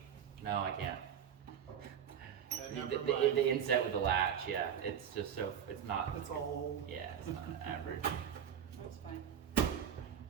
No, I can't. The inset with the latch, yeah. It's just so, it's not. It's all old. Yeah, it's not average. That's fine.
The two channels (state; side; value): quieter; left; 8.6 dB